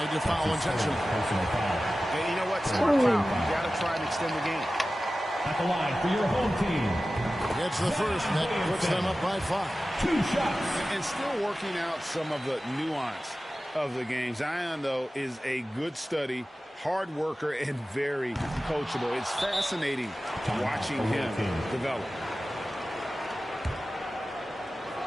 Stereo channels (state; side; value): normal; both; correlation 0.95